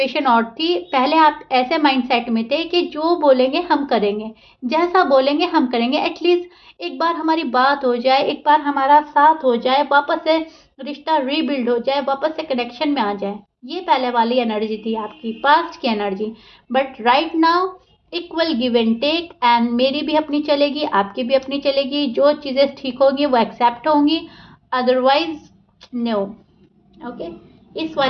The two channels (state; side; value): identical; both; correlation 1.00